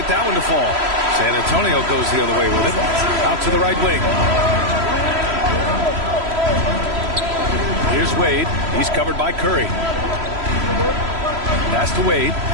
that one to fall. San Antonio goes the other way with it. Out to the right wing. Here's Wade. He's covered by Curry. Pass to Wade.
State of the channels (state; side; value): late; left; 3.0 ms